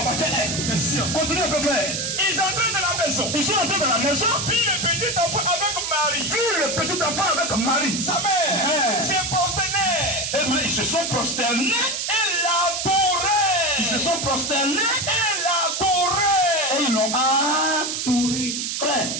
est? Question. Continue un peu, frère. Ils entraient dans la maison. Ils sont entrés dans la maison. Puis le petit enfant avec Marie. Puis le petit enfant avec Marie. Sa mère. Se prosternait. Et bien, ils se sont prosternés. Et l'adoraient. Ils se sont prosternés. Et l'adoraient. Et ils l'ont adoré. Frère,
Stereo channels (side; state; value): right; noise; hiss, 2 dB below the sound